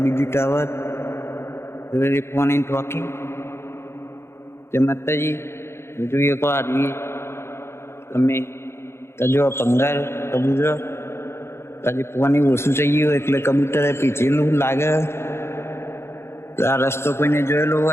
બીજું ટાવર પાણી ટોકી જય માતાજી જોઈએ તો આવી તમે તો જો પંગાર કબૂતર તાજી પાણી ઓછું થઈ ગયું એટલે કબૂતરે પીછેલું લાગે. આ રસ્તો કોઈને જોયેલો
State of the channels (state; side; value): late; right; 0.12 ms